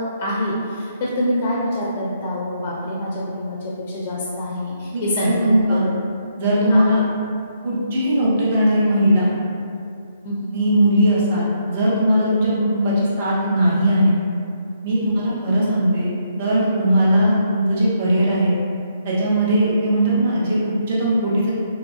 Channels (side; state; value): both; inverted; correlation -0.76